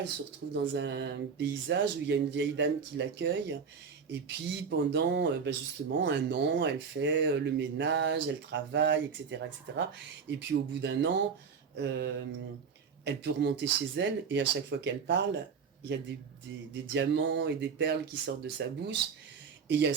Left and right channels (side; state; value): left; quieter; 6.1 dB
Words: se retrouve dans un paysage où il y a une vieille dame qui l'accueille. Et puis pendant justement un an, elle fait le ménage, elle travaille, etc., etc. Et puis au bout d'un an, elle peut remonter chez elle et à chaque fois qu'elle parle, il y a des diamants et des perles qui sortent de sa bouche. Et il y a